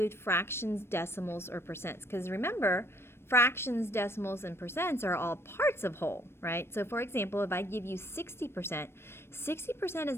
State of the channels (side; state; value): right; late; 0.12 ms